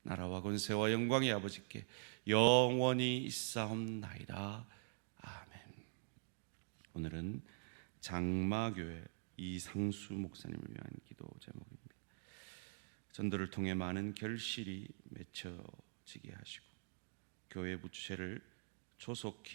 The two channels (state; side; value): silent; left; digital silence